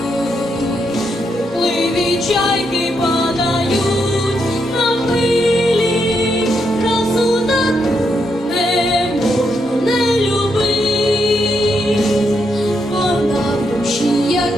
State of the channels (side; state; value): both; normal; correlation 0.80